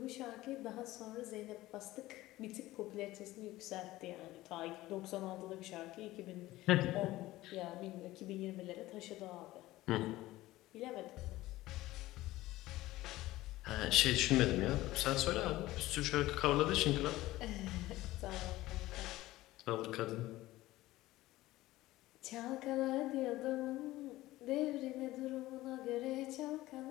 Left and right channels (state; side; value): quieter; right; 17.1 dB